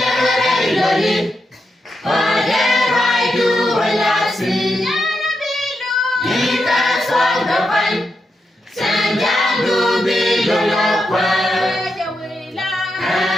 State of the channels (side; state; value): both; normal; correlation 0.85